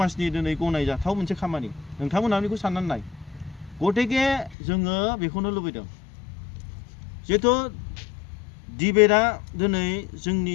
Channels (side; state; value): right; drops out; at 4.5 s